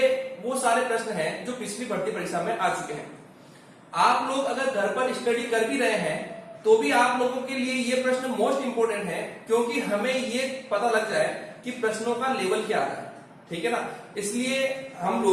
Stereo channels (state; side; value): identical; both; correlation 1.00